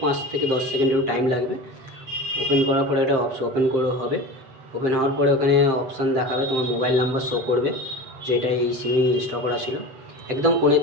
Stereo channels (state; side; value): late; left; 7.6 ms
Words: থেকে 10 সেকেন্ড একটু টাইম লাগবে। ওপেন করার পরে এটা ওপেন করে হবে। ওপেন হওয়ার পরে ওখানে অপশান দেখাবে, তোমার মোবাইল নাম্বার শো করবে যেটা এই সিমে ইনস্টল করা ছিল। একদম কোণের